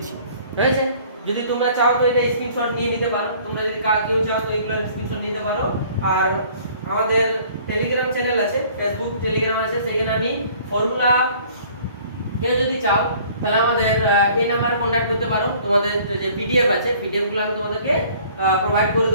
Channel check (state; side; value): inverted; both; correlation -0.54